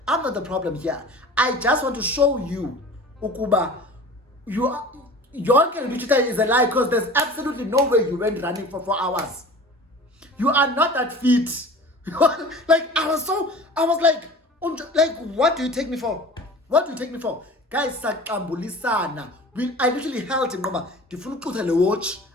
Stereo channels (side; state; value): both; normal; correlation 0.40